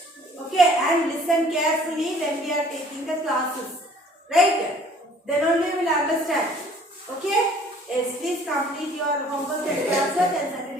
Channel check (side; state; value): both; normal; correlation 0.54